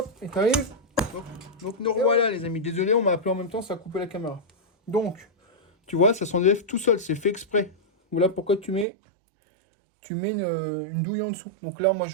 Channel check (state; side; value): drops out; left; at 8.8 s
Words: et tu arrives. Donc nous revoilà, les amis. Désolé, on m'a appelé en même temps, ça a coupé la caméra. Donc, tu vois, ça s'enlève tout seul. C'est fait exprès. Voilà pourquoi tu mets une douille en dessous. Donc là, moi,